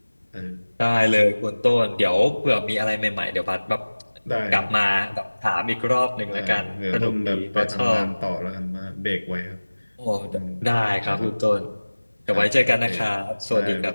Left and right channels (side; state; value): both; inverted; correlation -1.00